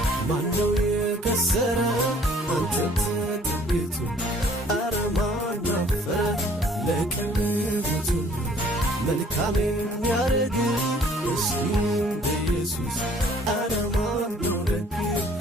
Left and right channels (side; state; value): both; normal; correlation 0.57